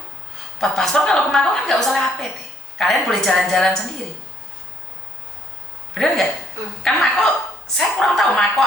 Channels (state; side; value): normal; both; correlation 0.66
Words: Buat paspor kalau ke Makau kan nggak usah lewat PT. Kalian boleh jalan-jalan sendiri. Bener nggak? Kan Makau, saya kurang tahu Makau